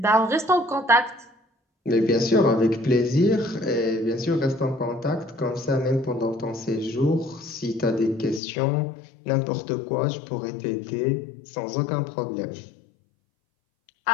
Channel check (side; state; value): right; drops out; at 8.4 s